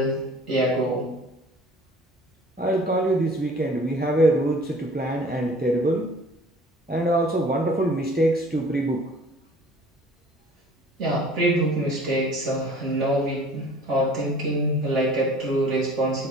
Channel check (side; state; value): both; normal; correlation 0.50